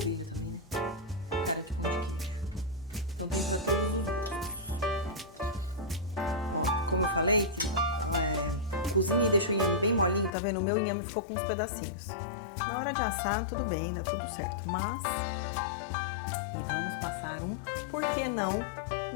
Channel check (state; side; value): drops out; right; at 10.3 s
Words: também, né? Cara de pão de queijo. Então tem pra todos os gostos. Ó, como eu falei, cozinha e deixa o inhame bem molinho, tá vendo? O meu inhame ficou com uns pedacinhos. Na hora de assar, tudo bem, tá tudo certo. Mas vamos passar por que não,